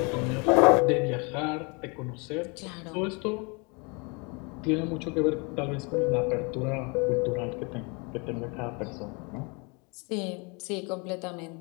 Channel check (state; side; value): quieter; right; 31.5 dB